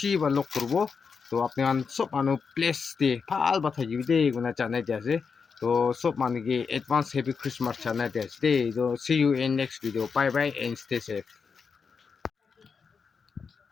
বা লগ কৰিব তো আপোনাক সব মানুহ প্লেস দি ভাল বা থাকিবি দেই কোনা জানাই দি আছে তো সব মানুহ কি এডভান্স হেপি ক্রিসমাস জানাই দি আছে দেই তো see you in next video bye bye and stay safe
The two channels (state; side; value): quieter; right; 5.6 dB